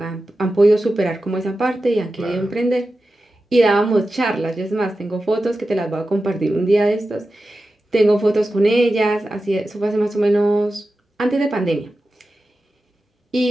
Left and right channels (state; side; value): normal; both; correlation 0.93